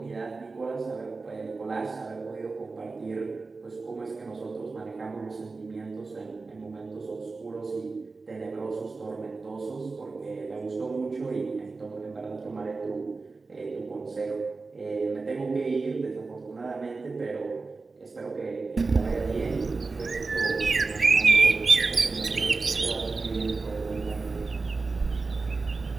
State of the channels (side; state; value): left; quieter; 4.0 dB